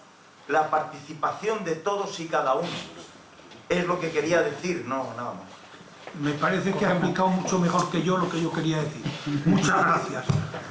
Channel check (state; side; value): identical; both; correlation 1.00